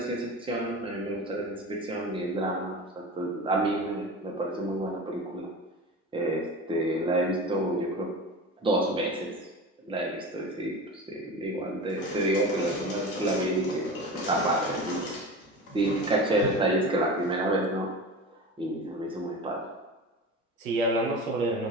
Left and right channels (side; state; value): both; normal; correlation 0.30